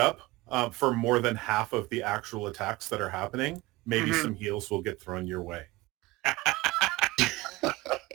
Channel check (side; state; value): left; quieter; 20.4 dB